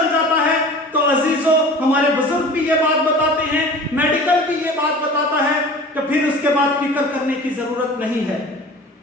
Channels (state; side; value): normal; both; correlation 0.40